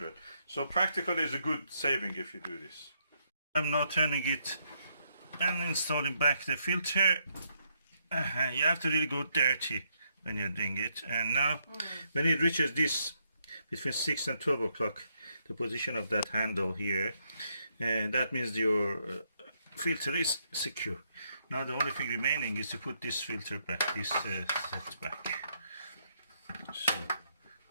So practically it's a good saving if you do this. I'm now turning it and installing back the filter. You have to really go dirty when you're doing it. And now when it reaches this, between 6 and 12 o'clock, the position of that handle here, and that means your filter is secure. Now the only thing remaining is to put this filter back, this set back. So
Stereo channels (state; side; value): inverted; both; correlation -0.76